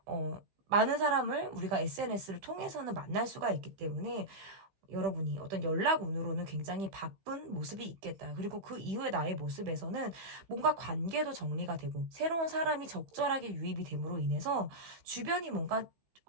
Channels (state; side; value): late; left; 15 ms